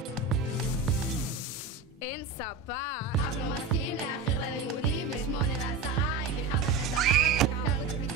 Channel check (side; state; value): left; quieter; 4.3 dB